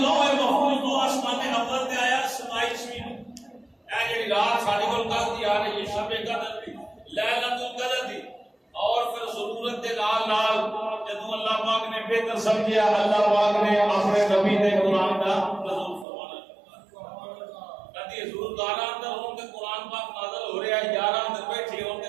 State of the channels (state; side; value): drops out; left; at 16.1 s